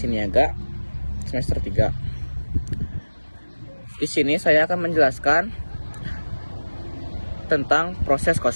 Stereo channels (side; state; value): both; inverted; correlation -1.00